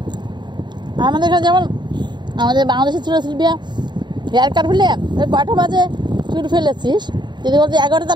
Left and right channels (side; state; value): left; late; 0.22 ms